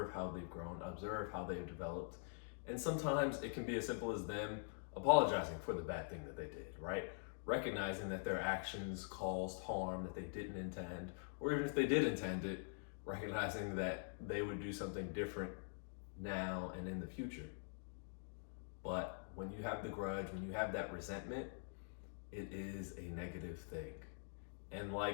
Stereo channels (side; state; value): right; silent; digital silence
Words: how they've grown, observe how they've developed. And sometimes it can be as simple as them apologizing for the bad thing that they did, right? Recognizing that their actions caused harm that they didn't intend, or even if they did intend it, recognizing that they would do something different now and in the future. But when you have the grudge, when you have that resentment, it is a negative thing. And